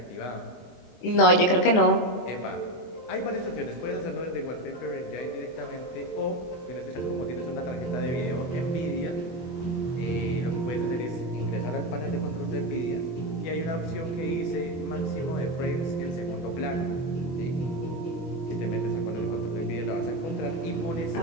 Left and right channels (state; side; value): late; right; 23 ms